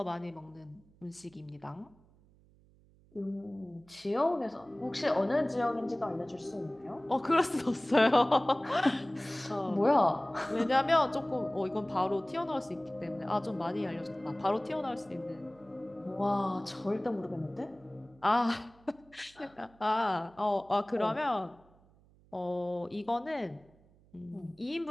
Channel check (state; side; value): noise; right; hum, 29 dB below the sound